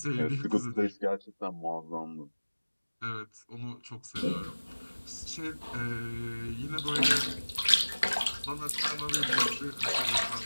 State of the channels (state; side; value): inverted; both; correlation -1.00